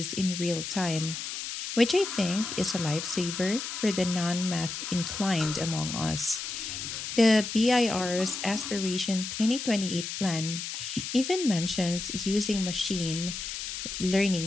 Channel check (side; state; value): left; noise; hiss, 6 dB below the sound